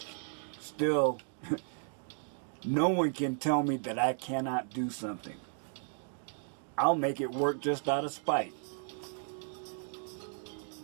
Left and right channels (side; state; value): left; silent; 55 dB below the other